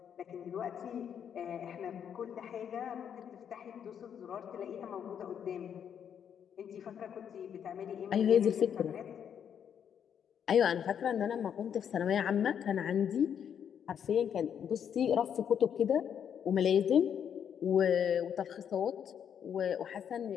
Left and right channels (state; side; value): quieter; right; 8.4 dB